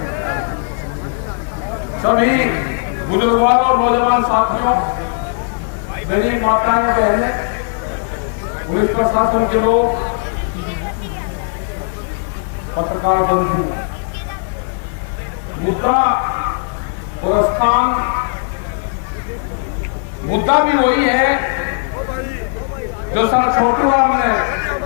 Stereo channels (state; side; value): silent; right; digital silence